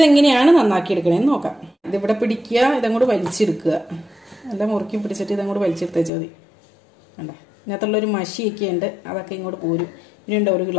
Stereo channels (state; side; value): drops out; right; at 6.1 s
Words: നന്നാക്കി എടുക്കണേന്ന് നോക്കാം. ഇതിവിടെ പിടിക്കുക, ഇതങ്ങോട്ട് വലിച്ചെടുക്കുക. എല്ലാം മുറുക്കി പിടിച്ചിട്ട് ഇതങ്ങോട്ട് വലിച്ചെടുത്തേച്ചാൽ മതി. കണ്ട ഇതിനകത്തുള്ളൊരു മഷിയൊക്കെ ഉണ്ട്, അതൊക്കെ ഇങ്ങോട്ട് പോരും. ഇനിയുണ്ട് ഒരു